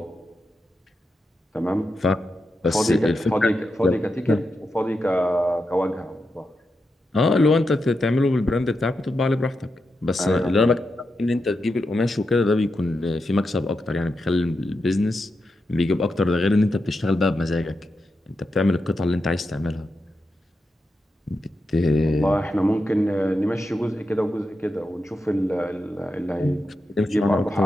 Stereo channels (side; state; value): both; normal; correlation 0.87